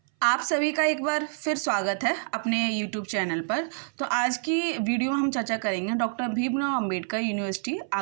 आप सभी का एक बार फिर स्वागत है अपने YouTube चैनल पर। तो आज की वीडियो में हम चर्चा करेंगे डॉक्टर भीमराव अंबेडकर यूनिवर्सिटी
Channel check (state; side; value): silent; left; 59 dB below the other